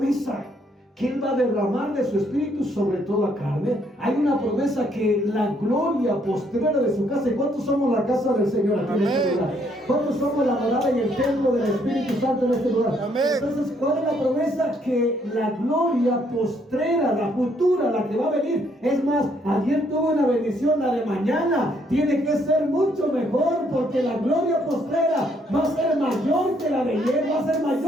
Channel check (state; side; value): normal; both; correlation 0.69